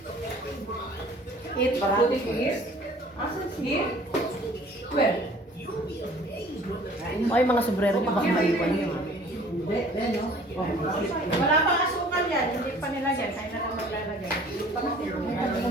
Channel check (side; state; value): both; normal; correlation 0.51